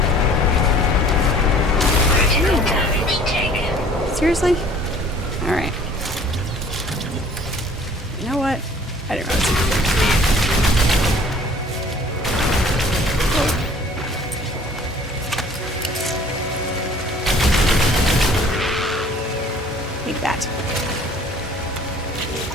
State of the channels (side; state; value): both; normal; correlation 0.52